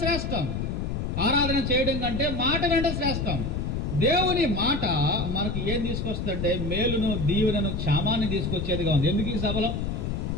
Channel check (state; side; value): noise; left; rumble, 2 dB below the sound